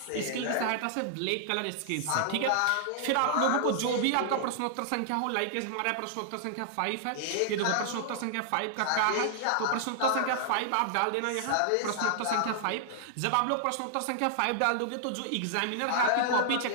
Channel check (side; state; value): both; different; correlation -0.01